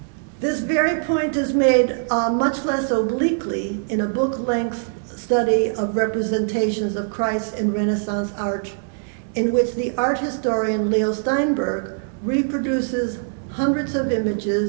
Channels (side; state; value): left; silent; digital silence